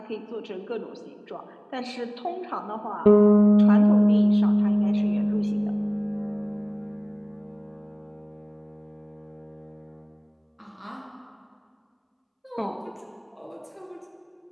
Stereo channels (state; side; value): identical; both; correlation 1.00